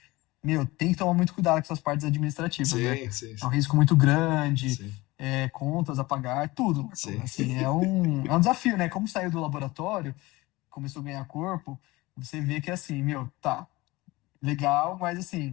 tem que tomar muito cuidado com essas partes administrativas, né? Sim. É um risco muito grande, contas a pagar, tudo, Marcão. Assim, é um desafio, né? Como saiu do laboratório, começou a ganhar corpo, você vê que, assim, tá, legal, mas,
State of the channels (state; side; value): quieter; right; 20.8 dB